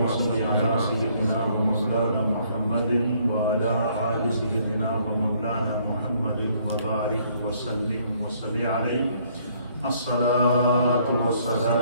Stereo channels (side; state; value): both; inverted; correlation -0.65